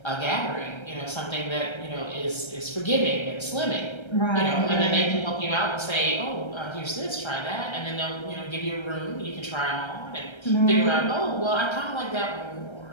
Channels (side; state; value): right; late; 1.3 ms